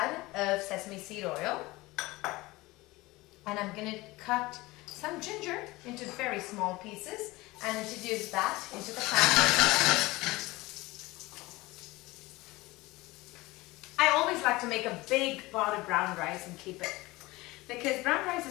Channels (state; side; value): quieter; right; 20.8 dB